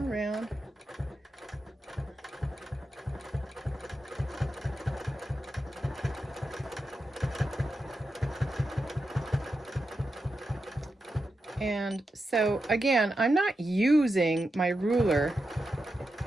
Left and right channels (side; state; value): both; normal; correlation 0.88